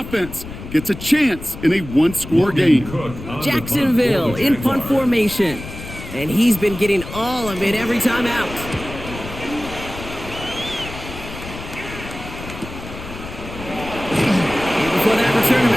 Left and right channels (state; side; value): noise; left; rumble, 12 dB below the sound